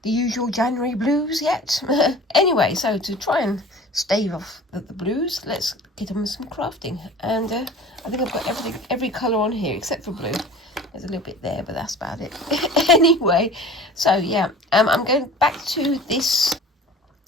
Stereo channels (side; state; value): both; normal; correlation 0.43